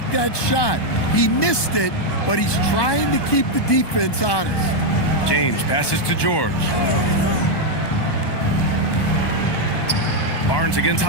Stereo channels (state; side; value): late; right; 1.2 ms